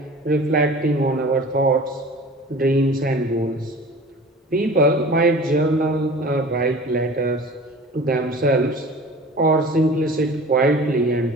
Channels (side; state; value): both; normal; correlation 0.41